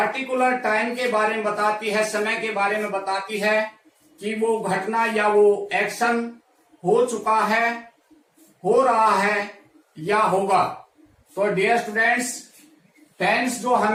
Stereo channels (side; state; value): both; identical; correlation 1.00